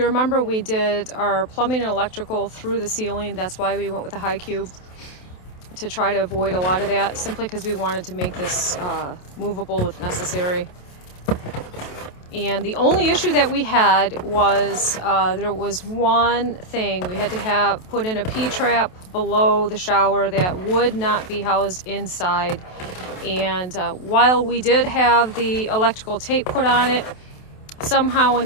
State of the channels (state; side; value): late; right; 27 ms